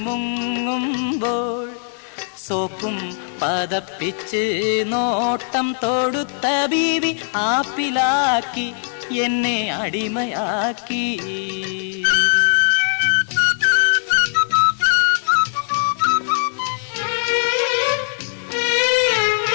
മുങ്ങുമ്പോൾ സോപ്പും പതപ്പിച്ച് നോട്ടം തൊടുത്ത ബീവി ആപ്പിലാക്കി എന്നെ അടിമയാക്കി.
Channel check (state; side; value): silent; right; 60 dB below the other